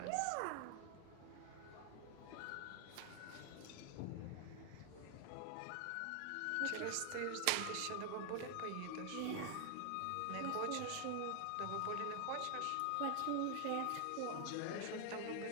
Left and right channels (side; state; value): both; different; correlation 0.00